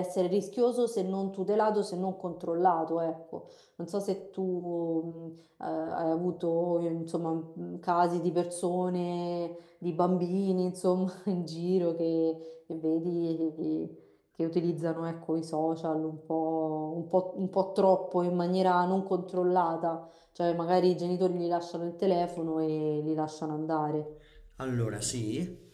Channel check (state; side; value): identical; both; correlation 1.00